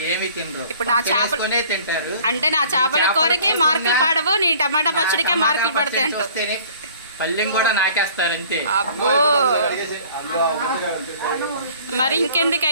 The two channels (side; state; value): both; inverted; correlation -0.52